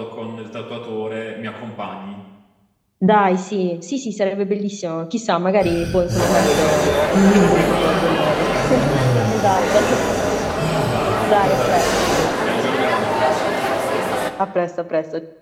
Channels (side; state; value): both; identical; correlation 1.00